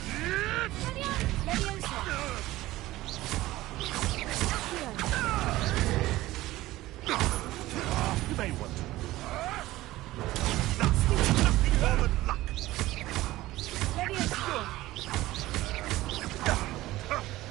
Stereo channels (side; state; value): left; quieter; 17.1 dB